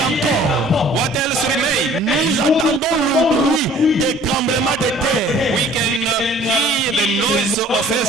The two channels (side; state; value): both; normal; correlation 0.52